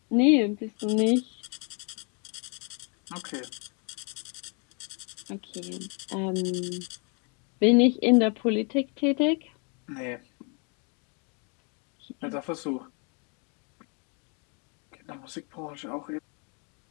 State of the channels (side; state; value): right; quieter; 36.4 dB